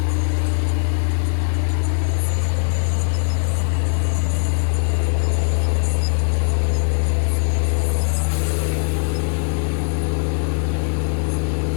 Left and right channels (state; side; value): silent; right; digital silence